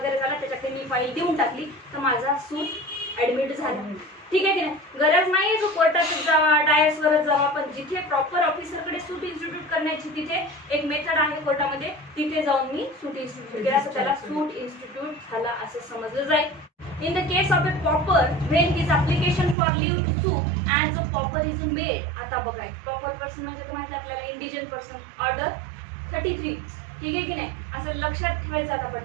झाला, त्याच्याकडे मी फाईल देऊन टाकली तर माझा सूट ऍडमिट झाला. ठीक आहे की नाही. गरज नाही जो कोर्टातच जावा, डायसवरच जावा, पण जिथे प्रॉपर ऑफिसरकडे सूट इन्स्टिट्यूट करण्याची तिथे एक मेथड आहे कोर्टामध्ये, तिथे जाऊन मी सूट इन्स्टिट्यूट केला तर त्याला सूट इन्स्टिट्यूट झाला असं समजलं जाईल. In the case of a pauper, when his application for leave to sue and the pauper is made. आता बघा, प्रॉपर पर्सन म्हणजे तर माहिती आपल्याला इंडिजन पर्सन, ऑर्डर 33. ठीक आहे की नाही. असं लक्षात ठेवायचं आता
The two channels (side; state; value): left; drops out; at 19.6 s